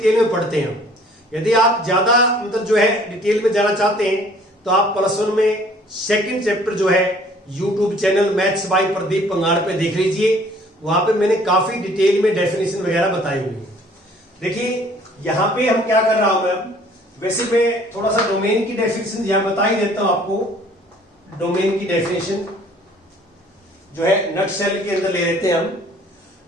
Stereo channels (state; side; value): normal; both; correlation 0.56